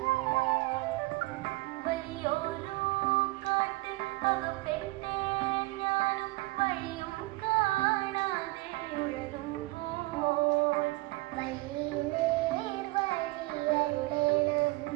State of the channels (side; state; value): left; quieter; 22.0 dB